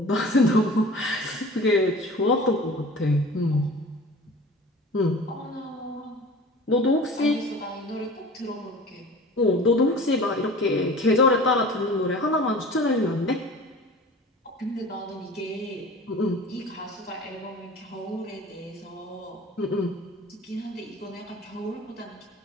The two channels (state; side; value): normal; both; correlation 0.40